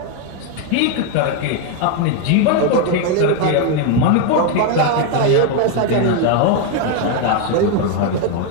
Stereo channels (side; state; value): both; different; correlation 0.01